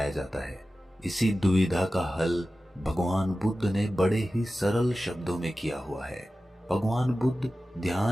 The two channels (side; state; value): both; normal; correlation 0.95